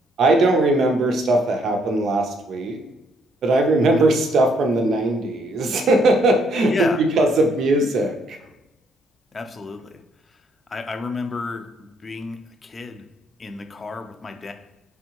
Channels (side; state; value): both; normal; correlation 0.70